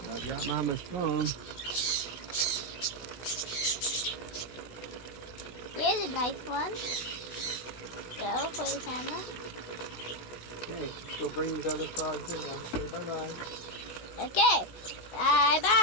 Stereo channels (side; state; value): right; late; 16 ms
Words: I got Mama's phone. Here's a nice one. Go for the camera. Okay, let's go bring these other frogs in now. Say bye-bye. Okay. Bye-bye,